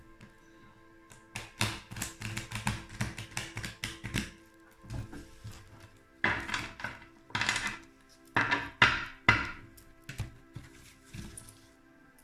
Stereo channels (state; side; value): identical; both; correlation 1.00